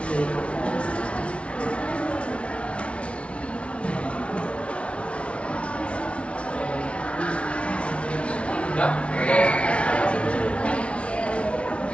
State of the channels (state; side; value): late; right; 0.061 ms